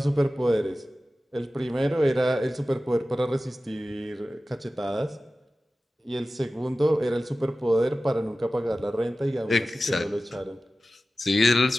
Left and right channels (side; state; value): both; normal; correlation 0.95